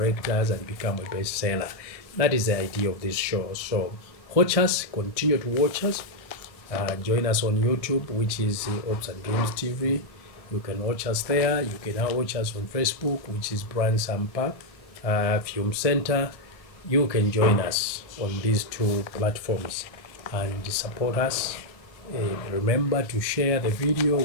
and become a bestseller. That is the idea of this show. So watch us, continue to watch us. Join us on YouTube, which is Ops and Dreams TV. You can watch us there. You can now watch us on Facebook, which is Brian Sampa Film Center. You can join us on these two platforms and support us. Remember to share the video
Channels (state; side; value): late; right; 1.6 ms